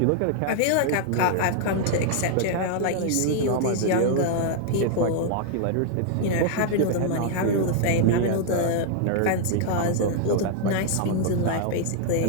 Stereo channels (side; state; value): both; different; correlation -0.01